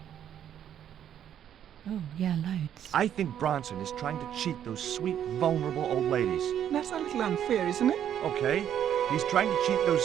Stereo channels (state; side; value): quieter; left; 9.9 dB